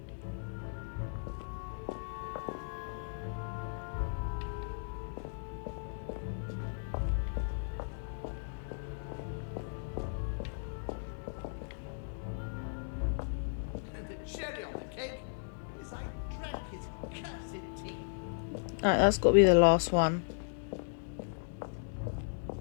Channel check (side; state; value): right; silent; digital silence